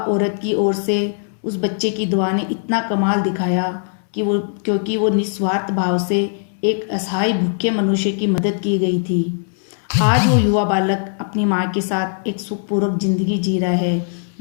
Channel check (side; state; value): right; silent; 66 dB below the other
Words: की ओर से उस बच्चे की दुआ ने इतना कमाल दिखाया क्योंकि वो निस्वार्थ भाव से एक असहाय भूखे मनुष्य की मदद की गई थी। आज वो युवा बालक अपनी माँ के साथ एक सुखपूर्वक जिंदगी जी रहा है,